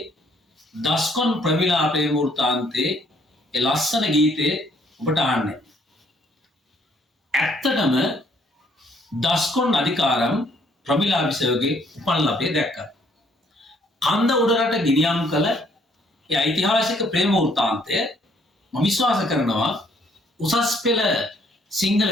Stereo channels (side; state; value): both; normal; correlation 0.66